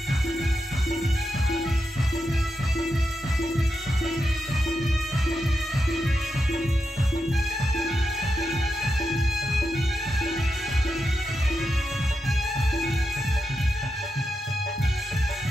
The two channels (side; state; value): both; normal; correlation 0.87